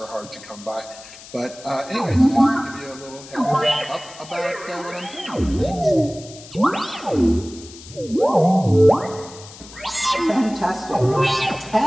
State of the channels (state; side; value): noise; left; hiss, 18 dB below the sound